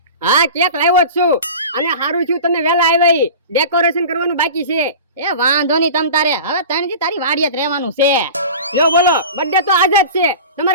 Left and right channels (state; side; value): inverted; both; correlation -0.35